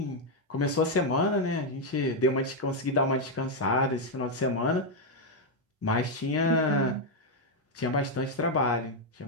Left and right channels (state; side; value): normal; both; correlation 0.01